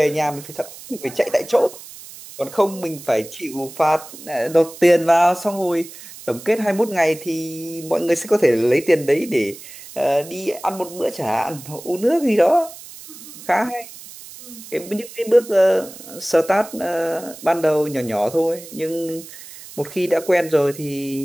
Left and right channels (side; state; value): right; noise; hiss, 16 dB below the sound